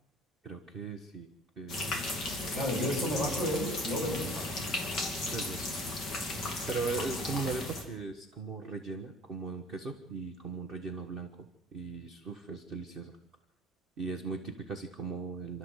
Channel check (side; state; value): both; normal; correlation 0.47